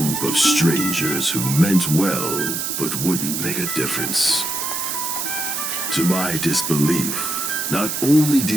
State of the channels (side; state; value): right; noise; hiss, 2 dB below the sound